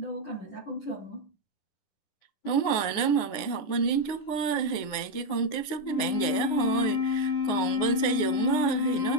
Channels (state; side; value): late; right; 9.7 ms